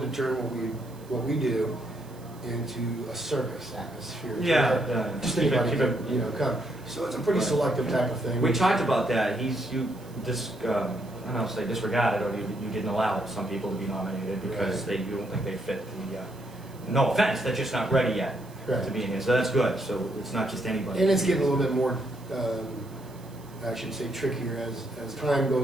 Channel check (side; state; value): right; noise; hiss, 25 dB below the sound